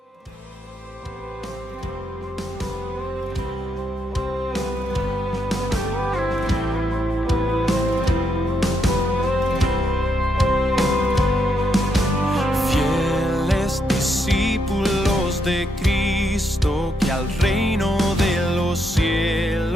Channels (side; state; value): both; normal; correlation 0.79